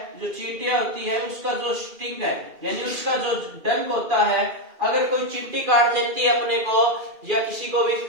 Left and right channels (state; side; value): late; left; 2.4 ms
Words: जो चींटियां होती है, उसका जो स्टिंग है यानी उसका जो डंक होता है, अगर कोई चींटी काट लेती है अपने को या किसी को भी,